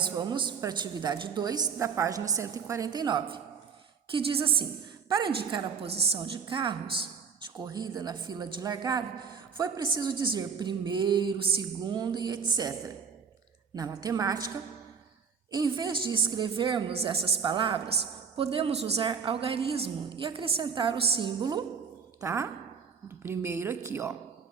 vamos para a atividade 2 da página 149, que diz assim: para indicar a posição de carros de corrida na fila de largada, foi preciso dizer primeiro, segundo e etc. Na matemática, em vez de escrevermos essas palavras, podemos usar algarismo e acrescentar o símbolo, tá? Do primeiro aqui, ó,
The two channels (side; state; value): left; quieter; 6.4 dB